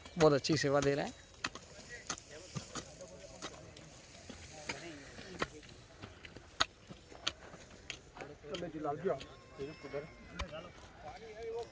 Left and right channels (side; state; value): both; identical; correlation 1.00